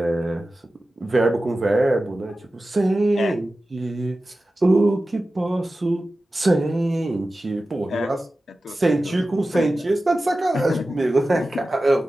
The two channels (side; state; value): both; normal; correlation 0.95